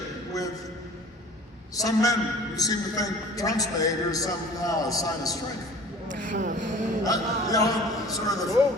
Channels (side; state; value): both; normal; correlation 0.45